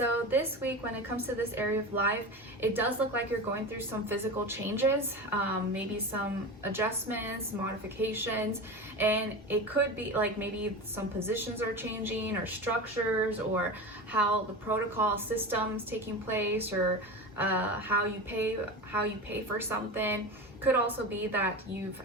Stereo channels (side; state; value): both; normal; correlation 0.26